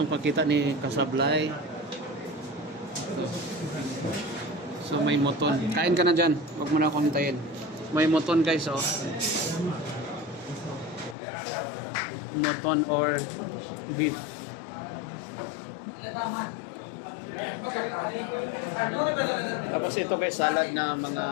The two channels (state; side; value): drops out; right; at 11.2 s